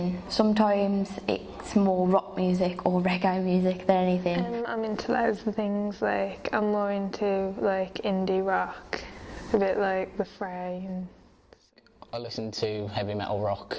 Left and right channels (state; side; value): identical; both; correlation 1.00